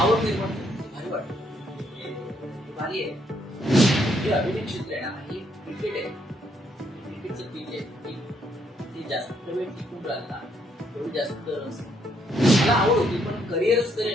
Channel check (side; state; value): both; normal; correlation 0.72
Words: आवड निर्माण भारी वाटतं भारी आहे. जे अभिनय क्षेत्र आहे ना हे क्रिकेट आहे क्रिकेटचं पीच आहे ती जास्त वेळ टिकून राहिला तेवढी जास्त मला आवड होती पण करिअरच